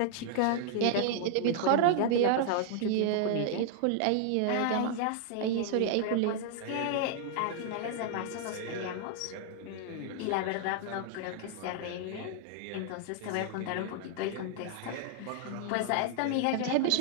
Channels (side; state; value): both; different; correlation -0.01